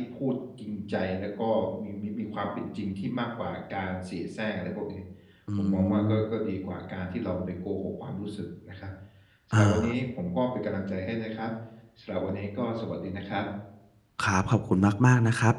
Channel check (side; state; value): both; identical; correlation 1.00